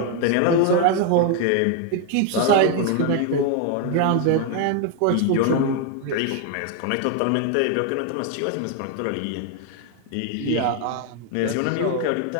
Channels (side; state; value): both; different; correlation 0.01